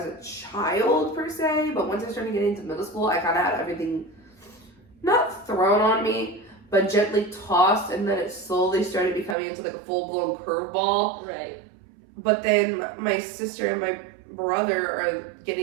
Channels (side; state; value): left; drops out; at 9.3 s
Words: a child, per se, but once I started getting into middle school, I kind of had everything, not thrown on me, but gently tossed, and then it slowly started becoming into, like, a full-blown curveball. Right. But then my sister and my brother are